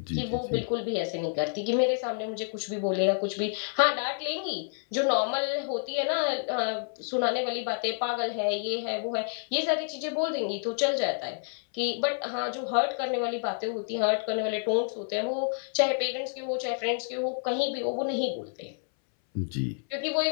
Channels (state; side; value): silent; right; 58 dB below the other